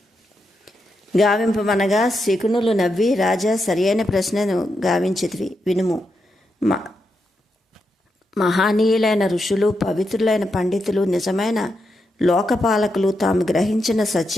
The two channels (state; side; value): normal; both; correlation 0.84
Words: గావింపమనగా శకునులు నవ్వి, రాజా, సరియైన ప్రశ్నను గావించితివి, వినుము. మహానీయులైన ఋషులు, పవిత్రులైన పండితులు, నిజమైన లోకపాలకులు తాము గ్రహించిన